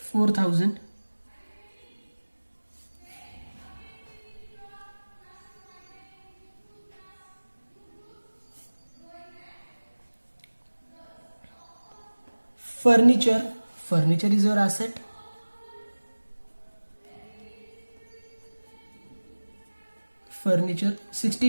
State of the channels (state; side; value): inverted; both; correlation -1.00